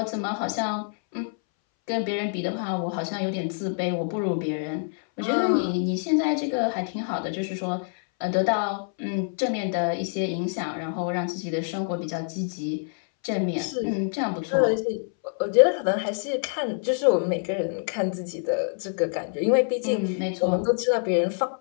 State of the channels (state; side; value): silent; right; 61 dB below the other